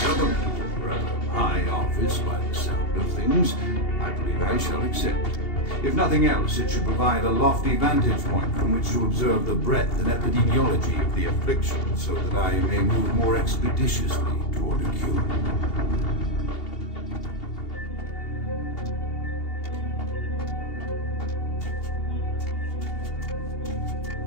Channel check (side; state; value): right; late; 2.8 ms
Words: a rather high office by the sound of things. I believe I shall accept. If nothing else, it should provide a lofty vantage point from which to observe the breadth and epidemiology of the affliction, so that I may move more expeditiously toward a cure.